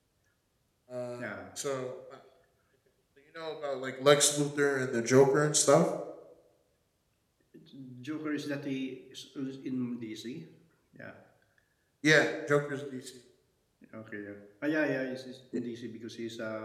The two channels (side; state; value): both; identical; correlation 1.00